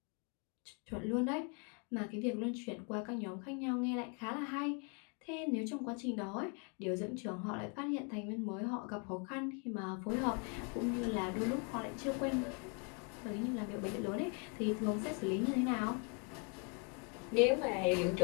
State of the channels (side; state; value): right; quieter; 35.4 dB